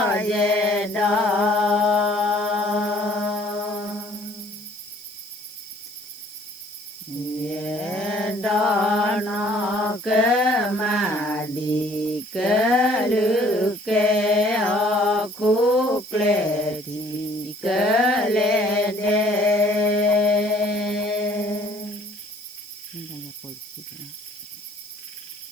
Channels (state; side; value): noise; right; hiss, 18 dB below the sound